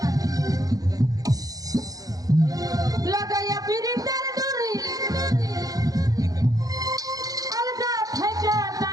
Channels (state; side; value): late; left; 0.18 ms